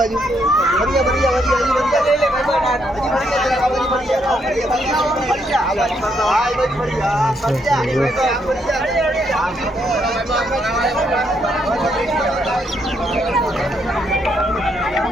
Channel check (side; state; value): both; normal; correlation 0.75